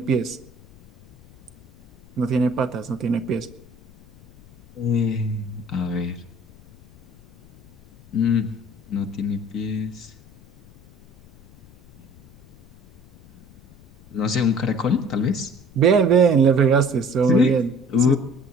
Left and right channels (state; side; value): noise; left; rumble, 25 dB below the sound